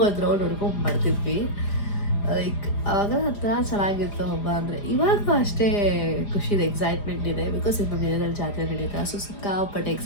ಒಂದು ರೌಂಡ್ ಹೊಡ್ಕೊಂಡು ಮಾಡ್ತಿದ್ವಿ. ಲೈಕ್ ಆವಾಗ ಹತ್ರ ಚೆನ್ನಾಗಿತ್ತು ಹಬ್ಬ ಅಂದರೆ. ಇವಾಗ ಅಷ್ಟೇ ಖುಷಿ ಇದೆ, ಎಕ್ಸೈಟ್ಮೆಂಟ್ ಇದೆ. ಬಿಕಾಸ್ ಇದು ನಮ್ಮ ಏರಿಯಾದಲ್ಲಿ ಜಾತ್ರೆ ನಡೀತಾ. ಸೊ ಸಿಕ್ಕಾಪಟ್ಟೆ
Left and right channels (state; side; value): late; right; 4.9 ms